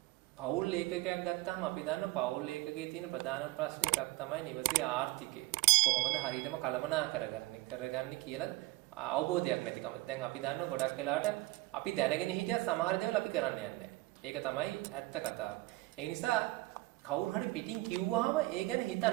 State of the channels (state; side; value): quieter; left; 20.1 dB